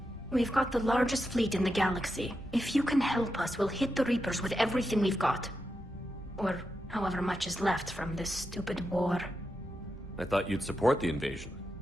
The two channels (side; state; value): both; normal; correlation 0.87